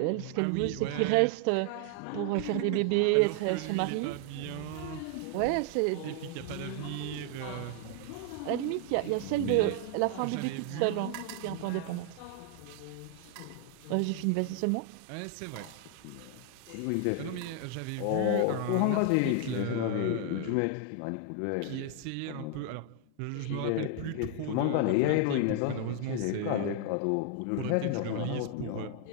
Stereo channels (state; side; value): different; both; correlation 0.00